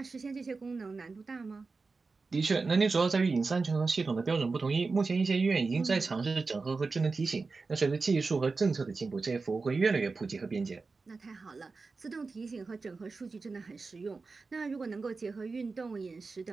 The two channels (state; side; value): quieter; left; 4.1 dB